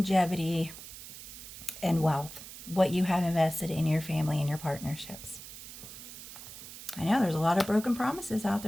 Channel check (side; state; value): right; noise; hiss, 13 dB below the sound